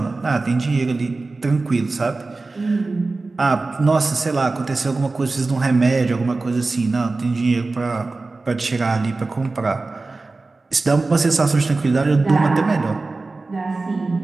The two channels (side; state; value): left; quieter; 3.5 dB